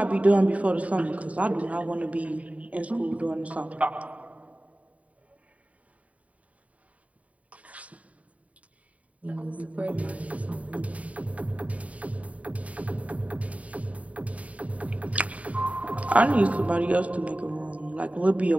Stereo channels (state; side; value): late; left; 0.068 ms